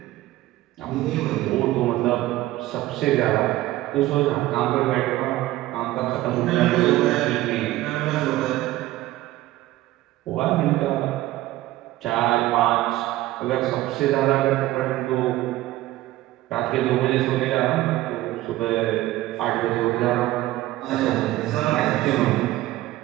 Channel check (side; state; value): left; quieter; 16.4 dB